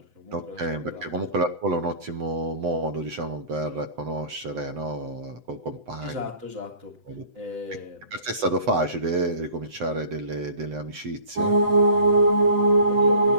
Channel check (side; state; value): left; late; 7.9 ms